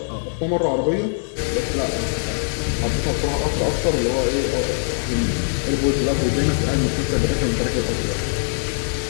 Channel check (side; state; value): right; silent; 64 dB below the other